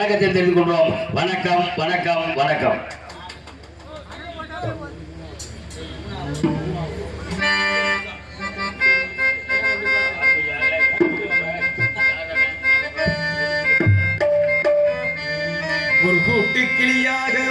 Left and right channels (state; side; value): identical; both; correlation 1.00